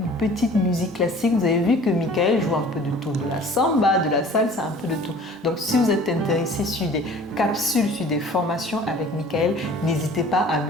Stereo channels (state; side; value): normal; both; correlation 0.47